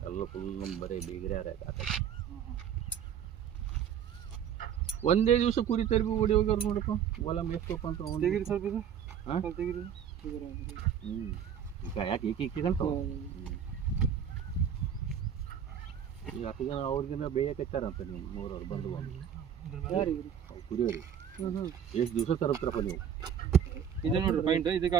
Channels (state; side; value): quieter; left; 8.6 dB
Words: ಎಲ್ಲ ಫುಲ್ ನಮ್ಮ ಬರೀ ಬೀಗ್ರೆ ಒಂದೇ ದಿವಸ ಕುರಿ ತರಬಿ ಓಡಿ ಹೋಗ್ಯಾರ ನೋಡಪ್ಪ. ಹೊಲ ಮೇಸ್ಕೊಪ್ಪ ಅಂತ ತೆಗಿರಿ ಸ್ವಲ್ಪ ಇದು ತೆಗಿರಿ. ಈಗ ಯಾಕೆ ಈಕಿಗಂತ ಈಗ ಹತ್ತು ಜನ ಅವ್ರಿಗಿನ್ನ ಬೇಯಕತ್ತಾರಂತ ನೀವು ಮೂರವ್ರು ಬಂದು ಕುರಿಯೋರಿ ಎಷ್ಟು ದಿವಸ ತರಪ್ರಪ್ಪ ನೀವು? ಇದು ನೋಡ್ರಿ ಪಾಯಿಂಟ್, ಇದಕ್ಕೆ